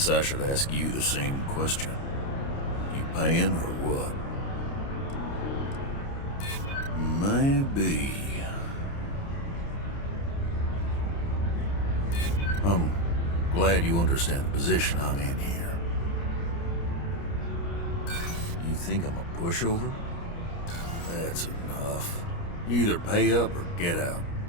I should ask you the same question. You paying or what? Maybe. I'm glad you understand the position I'm in here. You think I'm a pushover? That's enough. You either pay up or get out.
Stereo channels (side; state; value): right; late; 29 ms